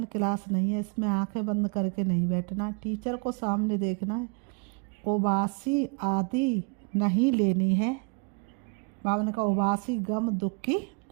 क्लास नहीं है, इसमें आंखें बंद करके नहीं बैठना है। टीचर को सामने देखना है। उबासी आदि नहीं लेनी है। बाबा ने कहा उबासी गम दुख की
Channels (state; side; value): quieter; left; 35.1 dB